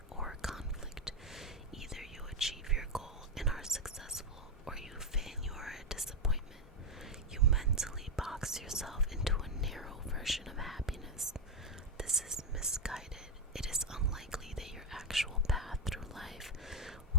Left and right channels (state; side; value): normal; both; correlation 0.06